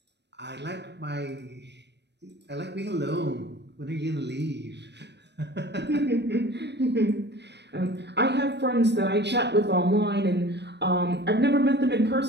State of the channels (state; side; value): late; left; 0.50 ms